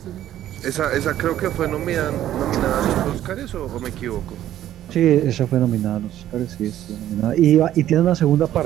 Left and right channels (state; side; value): quieter; left; 12.3 dB